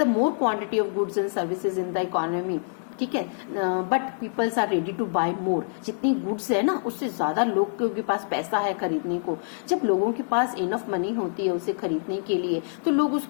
the more quantity of goods and services in the economy, ठीक है, but peoples are ready to buy more. जितनी गुड्स है ना, उससे ज्यादा लोगों के पास पैसा है खरीदने को। जब लोगों के पास इनफ मनी होती है उसे खरीदने के लिए, तो लोग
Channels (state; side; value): silent; right; 59 dB below the other